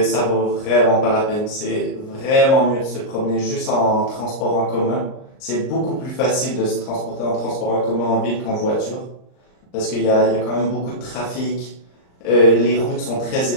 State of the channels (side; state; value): right; late; 38 ms